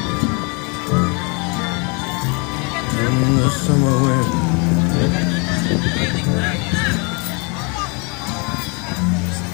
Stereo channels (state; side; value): quieter; right; 32.7 dB